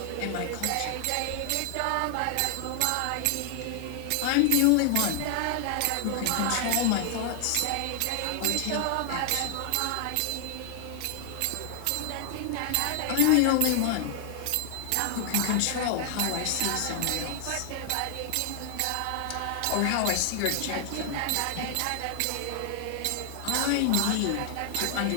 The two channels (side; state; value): both; different; correlation 0.00